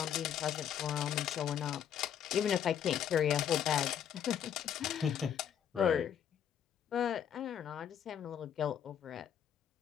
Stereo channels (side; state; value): right; quieter; 9.1 dB